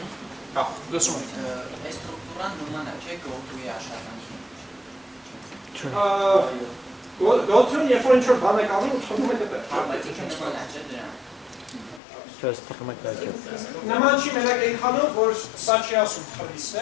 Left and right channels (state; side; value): drops out; right; at 12.0 s